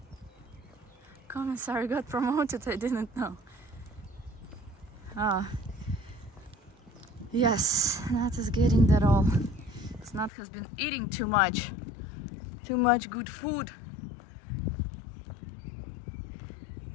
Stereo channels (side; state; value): right; drops out; at 10.3 s